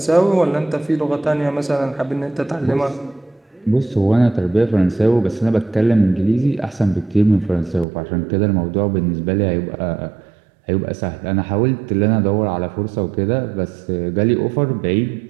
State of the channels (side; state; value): left; drops out; at 7.9 s